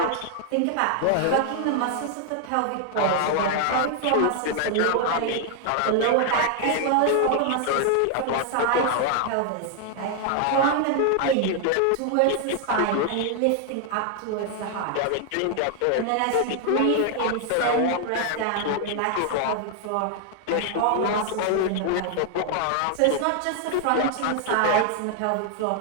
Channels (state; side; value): different; both; correlation 0.00